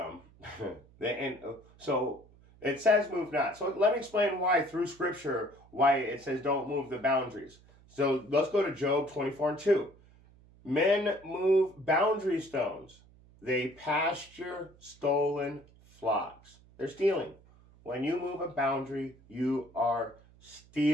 So It says move not. So let me explain why through scripture, why it says don't move the boundaries. So let's go to Job 24:2. Men move boundary stones. They pasture stolen flocks. They're stealing. When you move a boundary, you are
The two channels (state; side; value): noise; right; hum, 26 dB below the sound